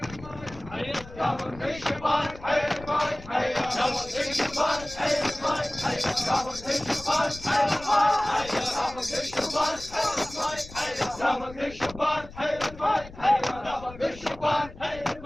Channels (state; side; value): noise; left; rumble, 17 dB below the sound